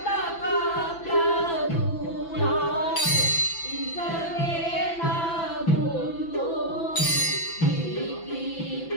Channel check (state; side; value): late; right; 6.0 ms